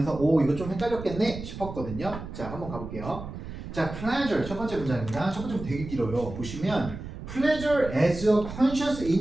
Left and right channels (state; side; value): noise; right; rumble, 10 dB below the sound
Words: 이거 좀 헷갈렸겠네 싶었거든요. 자, 한번 가볼게요. 자, pleasure 첫 번째 문장입니다. 첫 번째 문장 되게 길어요. 보시면 pleasure as a conscious